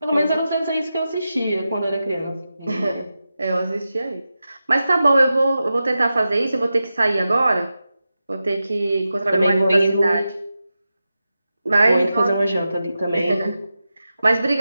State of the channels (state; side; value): inverted; both; correlation -0.92